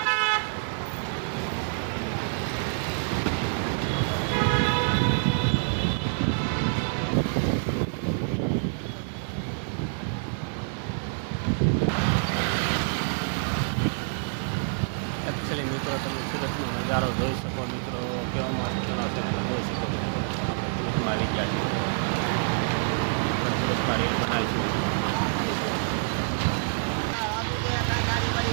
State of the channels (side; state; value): left; silent; digital silence